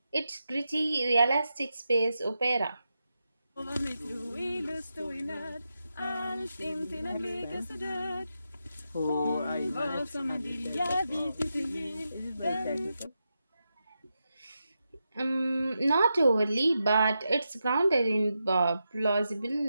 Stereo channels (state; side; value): inverted; both; correlation -0.88